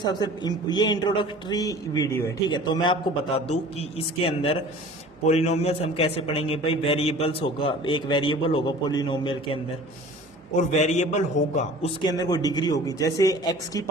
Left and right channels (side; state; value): both; normal; correlation 0.44